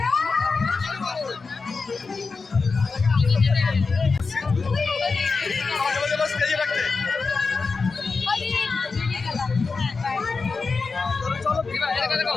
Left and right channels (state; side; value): quieter; right; 4.4 dB